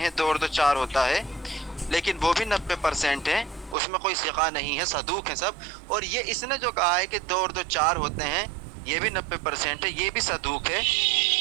2 اور 2 4 ہوتا ہے، لیکن وہ بھی 90% ہیں، اس میں کوئی ثقہ نہیں ہے، صدوق ہیں سب، اور یہ اس نے جو کہا ہے کہ 2 اور 2 4 ہوتے ہیں یہ بھی 90% ہے، یہ بھی صدوق ہے۔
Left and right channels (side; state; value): left; drops out; at 3.8 s